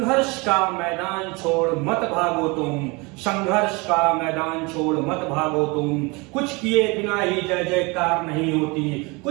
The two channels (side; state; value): left; quieter; 27.2 dB